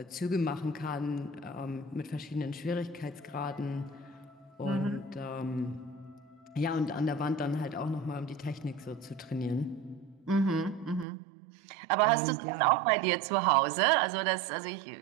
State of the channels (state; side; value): drops out; left; at 11.1 s